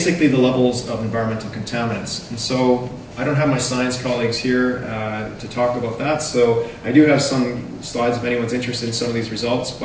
the levels of environmental contaminants. And so I don't have my science colleagues here to talk about that, so I do have some slides if anyone's interested in some of these results,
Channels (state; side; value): identical; both; correlation 1.00